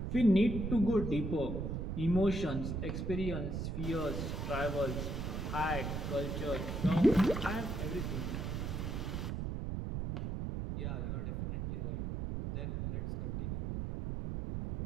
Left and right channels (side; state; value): right; noise; rumble, 2 dB below the sound